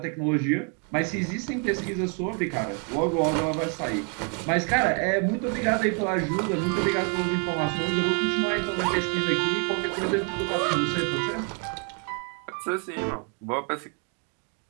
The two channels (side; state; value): left; quieter; 39.7 dB